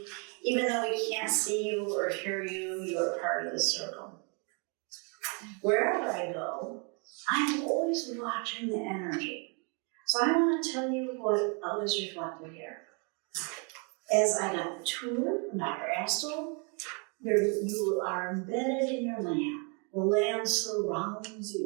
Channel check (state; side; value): quieter; left; 35.8 dB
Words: even though we can't see you or hear you, you are part of the circle. Wherever I go, I'm always watching the energy. So I want to tell you what others reflected here. As I got the tour from Dr. Astle, you are embedded in your land. The land surrounds